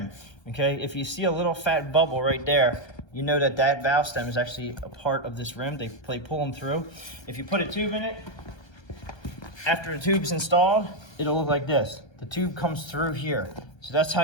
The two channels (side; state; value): right; late; 1.3 ms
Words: Okay, if you see a little fat bubble right there, you know that that valve stem is actually a part of this rim. They pull them through. If you put a tube in it, after the tube's installed, it'll look like this. The tube comes through here. So that's how